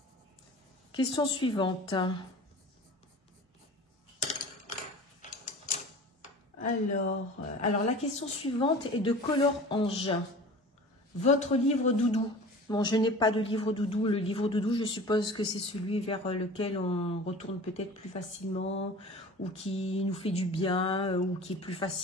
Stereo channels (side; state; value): both; normal; correlation 0.40